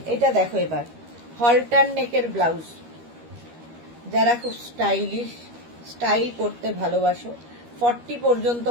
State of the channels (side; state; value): left; late; 13 ms